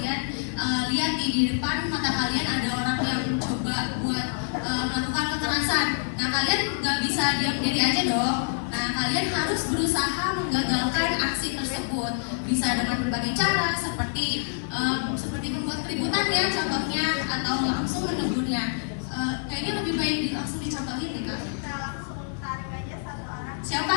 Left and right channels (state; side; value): silent; right; 61 dB below the other